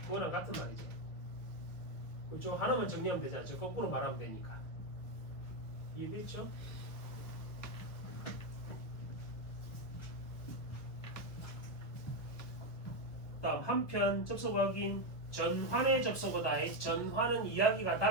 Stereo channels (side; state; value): right; late; 1.2 ms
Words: 그거랑 같은 말이지. 그쪽 하나만 정리하면 되잖아. 저 거꾸로 말하면 되니까. 이해됐죠? 다음 한편 접속 확인. 전환의 접속어다. 전환은 이야기가